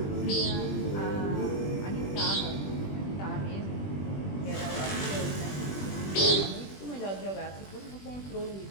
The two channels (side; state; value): right; late; 20 ms